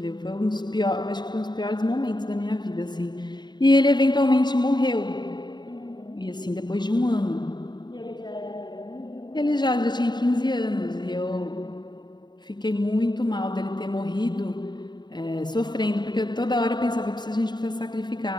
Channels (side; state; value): right; late; 0.21 ms